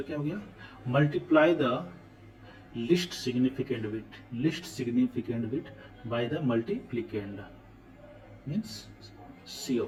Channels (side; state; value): both; identical; correlation 1.00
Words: क्या हो गया, multiply the least significant bit by the multiplicand, means C